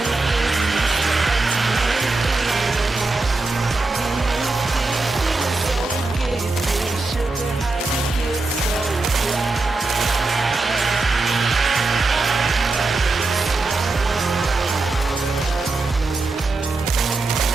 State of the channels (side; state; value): left; quieter; 3.4 dB